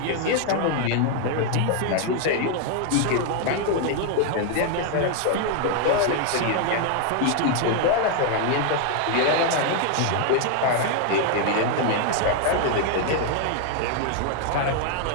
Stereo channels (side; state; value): both; different; correlation 0.00